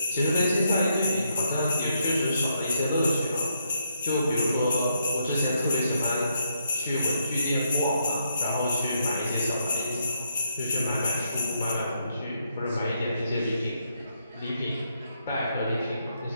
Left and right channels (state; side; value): inverted; both; correlation -0.77